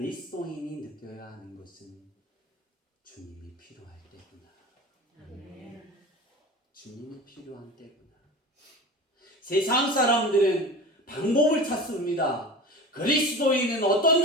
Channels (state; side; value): normal; both; correlation 0.33